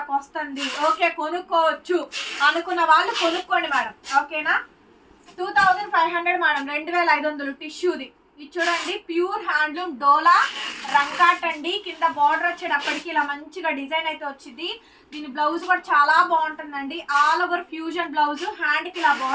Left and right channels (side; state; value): both; identical; correlation 1.00